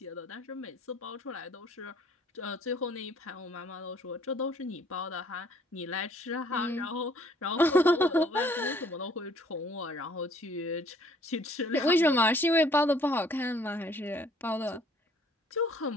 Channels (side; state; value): both; normal; correlation 0.59